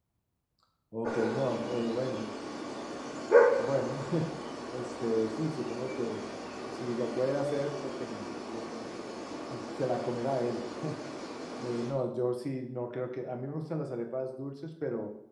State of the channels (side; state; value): both; identical; correlation 1.00